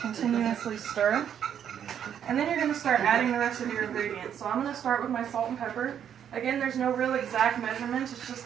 continuously stir. And then you're going to start adding the rest of your ingredients. So I'm going to start with my salt and pepper. Again, there's no real exact measurement, it's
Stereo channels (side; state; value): left; quieter; 9.0 dB